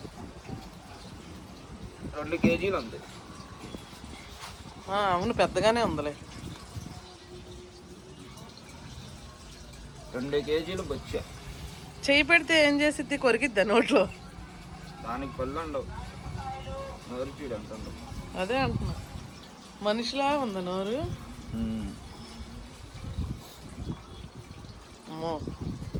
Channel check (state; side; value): identical; both; correlation 1.00